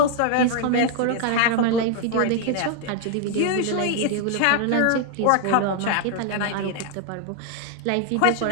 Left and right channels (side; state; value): both; different; correlation 0.00